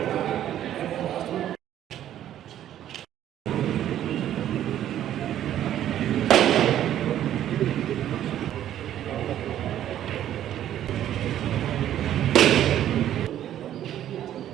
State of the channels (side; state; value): left; quieter; 11.5 dB